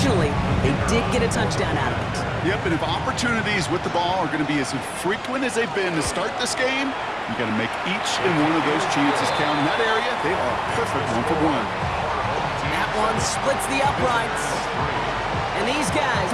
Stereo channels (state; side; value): identical; both; correlation 1.00